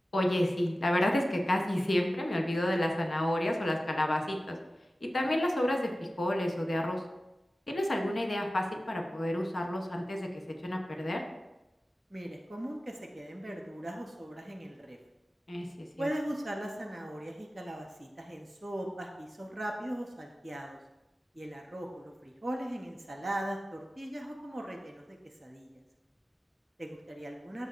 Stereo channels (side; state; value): both; normal; correlation 0.95